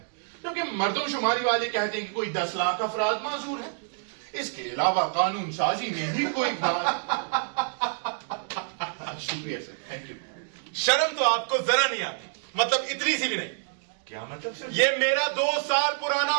जबकि मर्दमशुमारी वाले कहते हैं कि कोई 10 लाख अफराद माजूर है। इसके अलावा कानून साजी में भी कोई शुक्रिया सर, थैंक यू। शर्म तो आपको जरा नहीं आती, मतलब इतनी सी भी नहीं। क्या मतलब सर? ये मेरा 2 साल पुराना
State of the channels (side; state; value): left; silent; digital silence